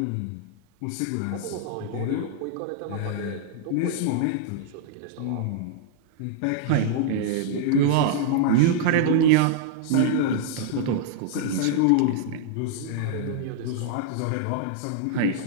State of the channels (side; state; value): both; different; correlation -0.01